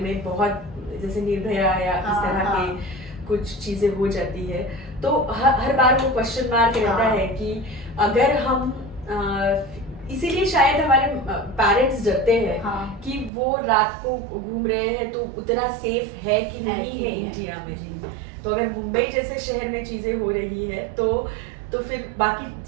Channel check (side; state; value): left; drops out; at 13.3 s